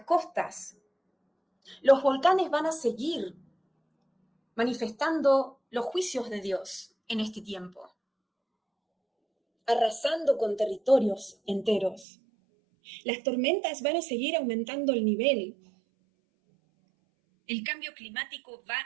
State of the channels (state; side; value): drops out; left; at 12.1 s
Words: costas, los volcanes van a seguir manifestando los juicios de Dios en este tiempo, arrasando con territorios enteros. Las tormentas van a seguir aumentando el nivel. El cambio climático va